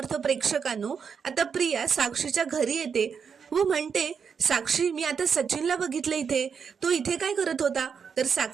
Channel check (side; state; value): left; quieter; 6.4 dB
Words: प्रेक्षकांनो, आता प्रिया साक्षीच्या घरी येते व म्हणते, साक्षी मी आता सचिनला बघितलं इथे, तो इथे काय करत होता? तर